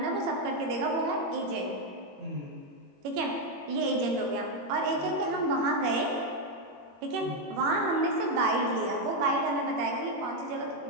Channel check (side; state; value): left; late; 21 ms